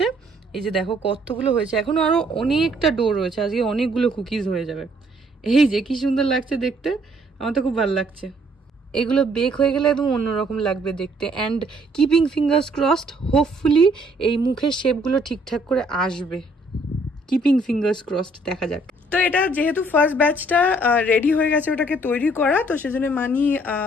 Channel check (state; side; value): normal; both; correlation 0.64